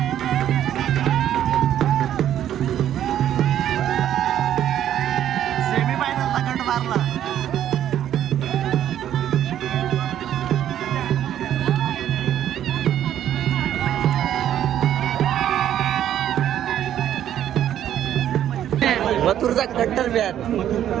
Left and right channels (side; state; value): left; quieter; 11.0 dB